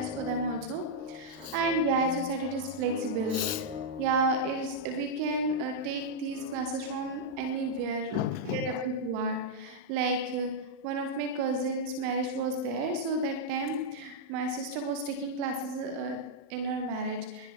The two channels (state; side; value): late; left; 39 ms